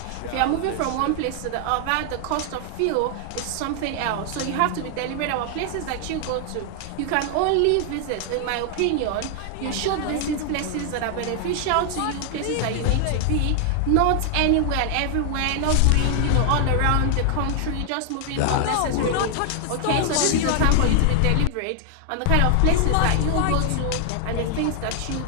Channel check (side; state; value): both; different; correlation 0.00